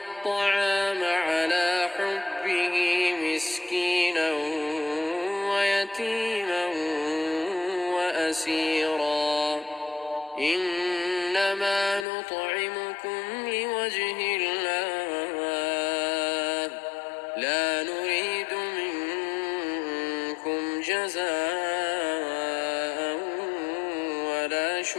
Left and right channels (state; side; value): drops out; right; at 12.1 s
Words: على حبه مسكينا ويتيما وأسيرا إنما نطعمكم لوجه الله لا نريد منكم جزاء ولا